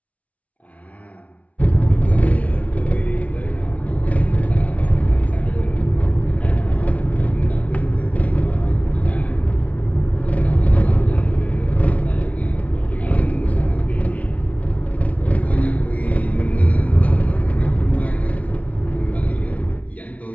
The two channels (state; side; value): late; right; 0.068 ms